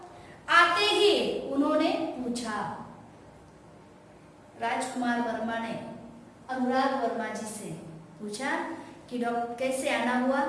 आते ही उन्होंने पूछा। राजकुमार वर्मा ने अनुराग वर्मा जी से पूछा कि डॉक्टर कैसे आना हुआ,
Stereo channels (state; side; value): identical; both; correlation 1.00